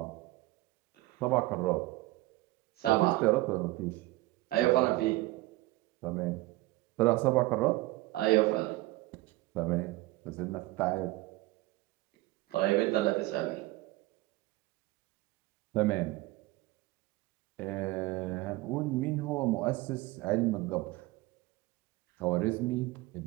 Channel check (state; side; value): quieter; left; 19.3 dB